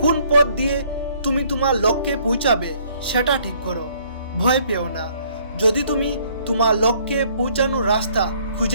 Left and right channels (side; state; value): both; inverted; correlation -0.63